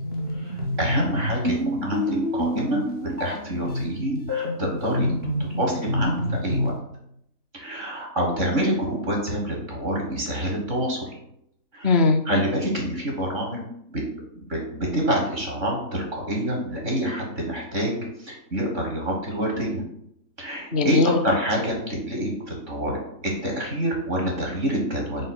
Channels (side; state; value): left; late; 3.6 ms